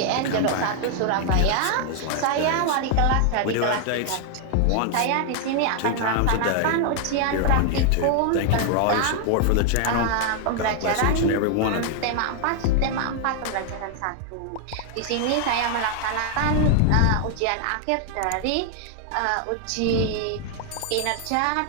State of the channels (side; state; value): both; different; correlation 0.00